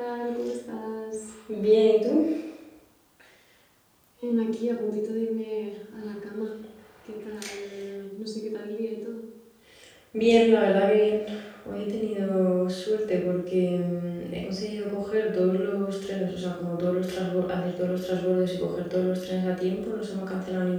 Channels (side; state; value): both; identical; correlation 1.00